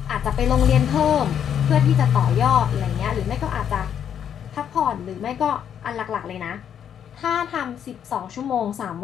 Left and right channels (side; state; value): right; quieter; 8.9 dB